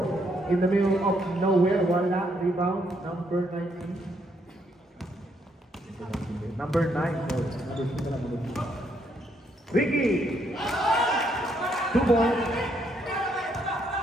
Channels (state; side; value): normal; both; correlation 0.73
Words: In the middle of nowhere. Wala. Rebound. Number 19. Number 9. No, number 2 na lang. Ricky. 2 points.